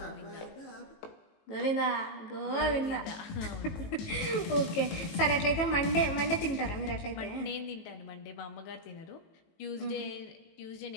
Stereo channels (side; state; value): right; late; 18 ms